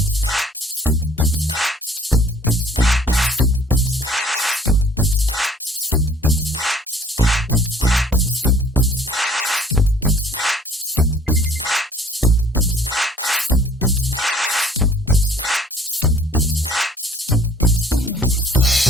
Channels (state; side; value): normal; both; correlation 0.56